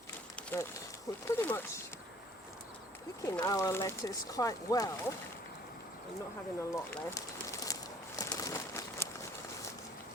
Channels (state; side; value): normal; both; correlation 0.55